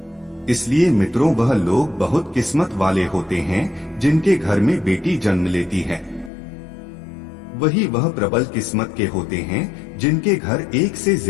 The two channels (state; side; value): drops out; right; at 6.3 s